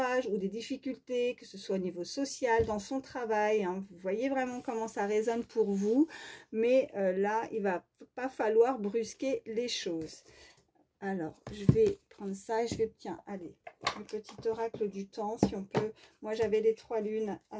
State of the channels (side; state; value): both; identical; correlation 1.00